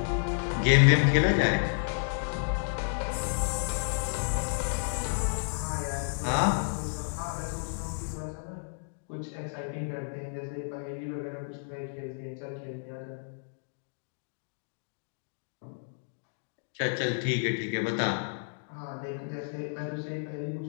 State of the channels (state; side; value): silent; right; digital silence